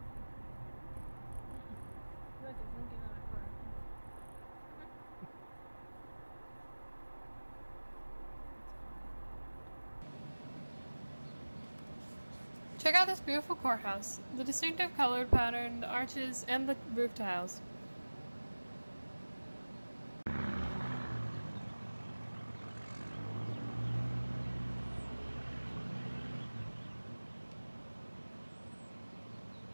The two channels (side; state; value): both; inverted; correlation -1.00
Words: Check out this beautiful courthouse, the distinctive colored pattern, the arches, and the roof tiles.